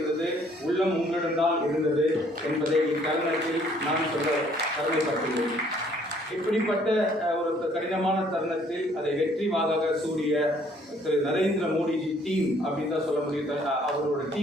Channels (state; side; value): normal; both; correlation 0.62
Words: உள்ளம் உங்களிடம்தான் இருந்தது என்பதை இத்தருணத்தில் நான் சொல்ல கடமைப்பட்டுள்ளேன். இப்படிப்பட்ட ஒரு கடினமான தருணத்தில் அதை வெற்றி வாகாக சூடிய திரு நரேந்திர மோடிஜி டீம் அப்படின்னு தான் சொல்ல முடியும். அவரோட